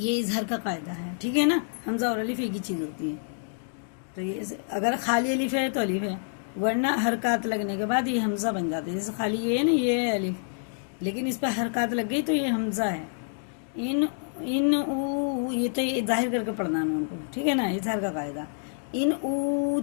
اظہار کا قاعدہ ہے، ٹھیک ہے نا. حمزہ اور الف ایک ہی چیز ہوتی ہے. تو یہ اگر خالی الف ہے تو الف ہے، ورنہ حرکات لگنے کے بعد یہ حمزہ بن جاتا ہے. جیسے خالی یہ ہے نا، یہ ہے الف، لیکن اس پہ حرکات لگ گئی تو یہ حمزہ ہے. ان او، یہ تو یہ ظاہر کر کے پڑھنا نون کو، ٹھیک ہے نا. اظہار کا قاعدہ. ان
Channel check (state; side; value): silent; right; digital silence